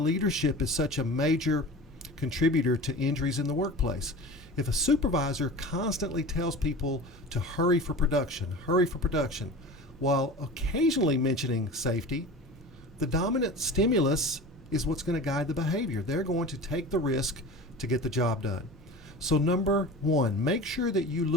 is such a major contributor to injuries in the workplace. If a supervisor constantly tells people to hurry for production, while occasionally mentioning safety, the dominant stimulus is what's going to guide the behavior. They're going to take the risk to get the job done. So number one, make sure that you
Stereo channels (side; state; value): both; normal; correlation 0.35